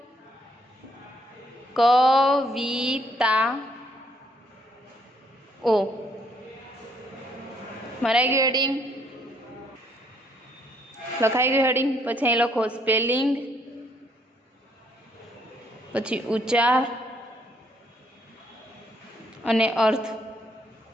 કવિતા ઓ. મરાઈ ગયું હેડિંગ, લખાઈ ગયું હેડિંગ. પછી અહીં લખો સ્પેલિંગ, પછી ઉચ્ચાર અને અર્થ.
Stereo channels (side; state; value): both; normal; correlation 0.68